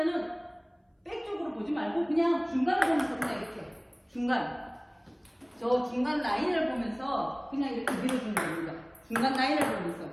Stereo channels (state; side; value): identical; both; correlation 1.00